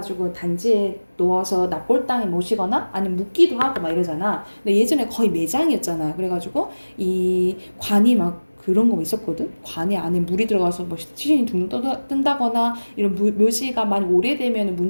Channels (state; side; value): inverted; both; correlation -1.00